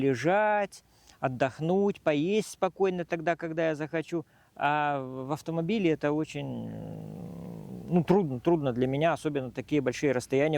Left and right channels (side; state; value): both; identical; correlation 1.00